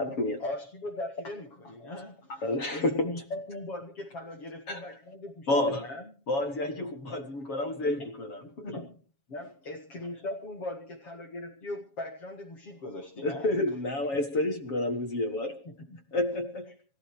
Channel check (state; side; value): late; right; 7.3 ms